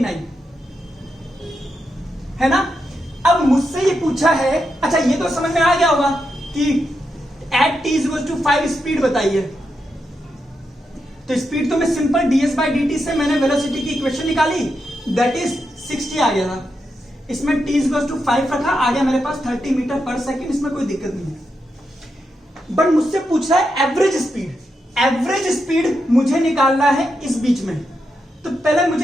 है ना। अब मुझसे ये पूछा है, अच्छा ये तो समझ में आ गया होगा कि एट t = 5 स्पीड बताइए। तो स्पीड तो मैं सिंपल ds/dt से मैंने वेलोसिटी की इक्वेशन निकाली, दैट इज 60 आ गया था। इसमें t = 5 रखा, आ गया मेरे पास 30 मीटर पर सेकेंड। इसमें कोई दिक्कत नहीं है। बट मुझसे पूछ रहा है एवरेज स्पीड। एवरेज स्पीड मुझे निकालना है इस बीच में। तो पहले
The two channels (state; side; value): normal; both; correlation 0.85